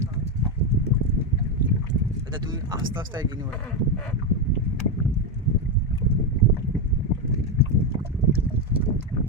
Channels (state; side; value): normal; both; correlation 0.08